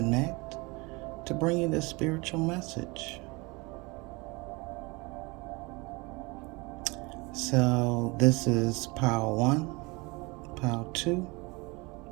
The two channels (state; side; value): quieter; left; 26.1 dB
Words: to bring you this spiritual message. So this is Pile 1, Pile 2,